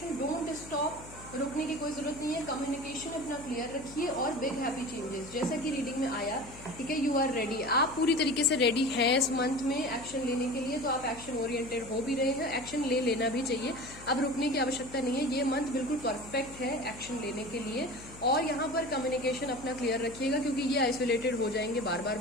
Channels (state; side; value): noise; left; hum, 17 dB below the sound